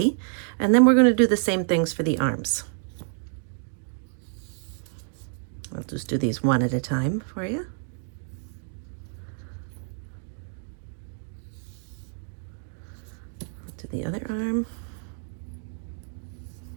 And then we're going to do the same things for the arms. I'll just do these one at a time for you. To the other arm.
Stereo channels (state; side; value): silent; left; digital silence